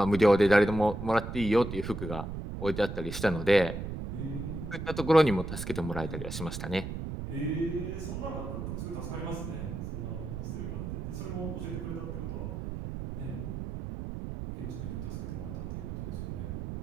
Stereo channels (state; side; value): noise; right; rumble, 6 dB below the sound